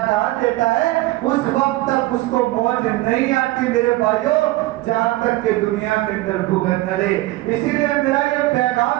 کہاں دیتا ہے؟ اس وقت تک اس کو موت نہیں آتی میرے بھائیوں جہاں تک کہ دنیا کے اندر بھگت نہ رہے. اسی لیے میرا یہ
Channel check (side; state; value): left; quieter; 18.5 dB